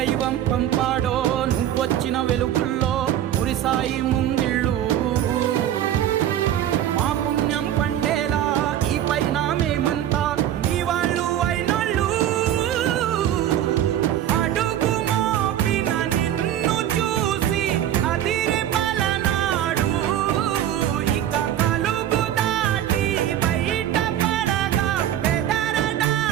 పంపాడో నువ్వొచ్చిన వెలుగుల్లో మురిసాయి ముంగిళ్ళు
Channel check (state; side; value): quieter; left; 11.4 dB